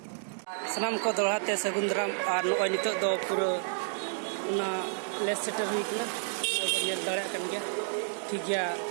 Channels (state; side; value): silent; left; digital silence